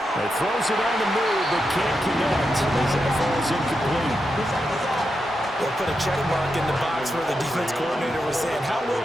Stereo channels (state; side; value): normal; both; correlation 0.86